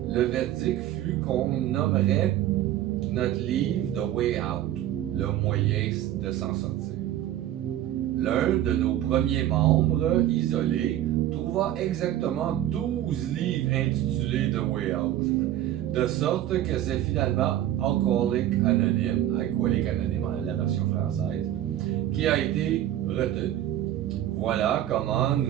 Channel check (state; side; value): quieter; left; 12.5 dB